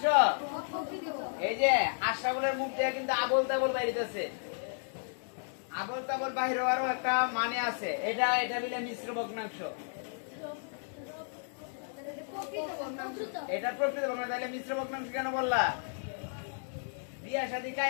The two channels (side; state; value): right; silent; digital silence